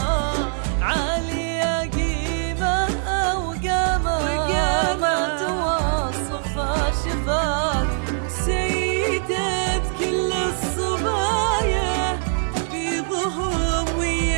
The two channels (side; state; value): left; silent; digital silence